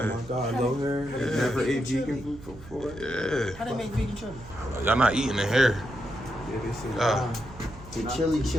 my guy low hair. Never ate vegan food before. Yeah. How they make vegan chili? Y'all not eating in here. Yeah, they say The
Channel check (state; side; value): noise; right; hum, 17 dB below the sound